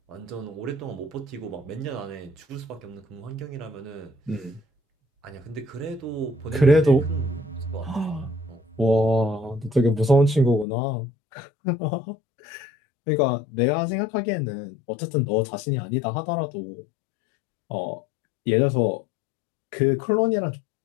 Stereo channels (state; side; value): drops out; right; at 10.7 s